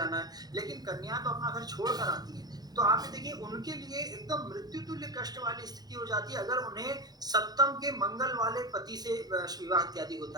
है, लेकिन कन्या तो अपना घर छोड़ कर आती है। तो आप ये देखिए, उनके लिए एकदम मृत्यु तुल्य कष्ट वाली स्थिति हो जाती है अगर उन्हें सप्तम के मंगल वाले पति से विवाह इत्यादि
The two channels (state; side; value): late; left; 0.19 ms